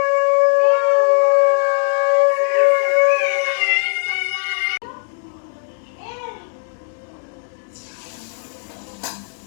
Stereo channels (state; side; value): silent; right; 59 dB below the other